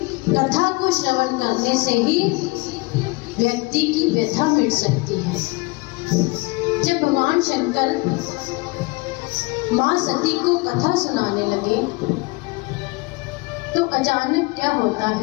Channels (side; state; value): right; quieter; 25.4 dB